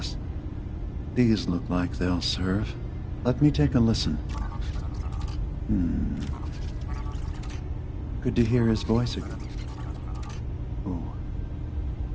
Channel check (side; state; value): both; identical; correlation 1.00